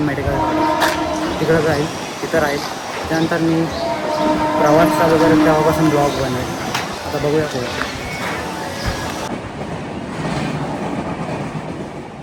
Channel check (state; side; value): identical; both; correlation 1.00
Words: मेडिकल कॉलेज तिकडं जाईल तिथं राहील. त्यानंतर मी प्रवास चालू करेल तेव्हापासून ब्लॉग बनवेल. आता बघूया पुढे.